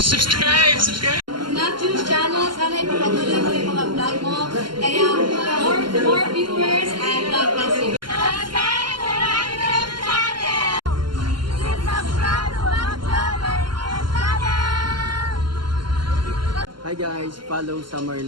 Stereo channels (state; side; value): late; left; 0.72 ms